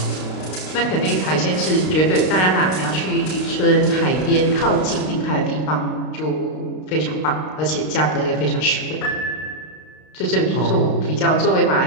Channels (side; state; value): right; late; 32 ms